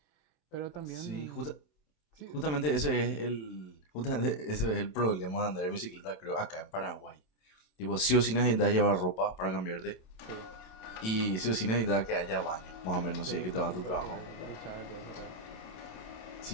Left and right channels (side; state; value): right; late; 27 ms